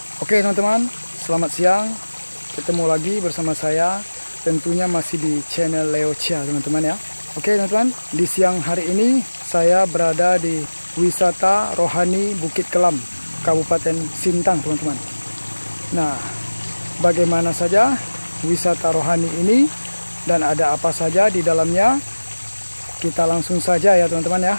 Oke teman-teman, selamat siang. Ketemu lagi bersama saya, tentunya masih di channel Leo Chia teman-teman ya. Oke teman-teman, di siang hari ini saya berada di wisata rohani Bukit Kelam, Kabupaten Sintang teman-teman. Nah, bagaimana saja wisata rohani ini dan ada apa saja di dalamnya? Kita langsung saja ya teman-teman ya,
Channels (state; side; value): inverted; both; correlation -1.00